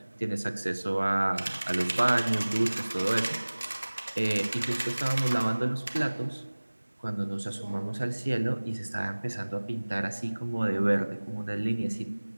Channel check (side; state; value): both; inverted; correlation -1.00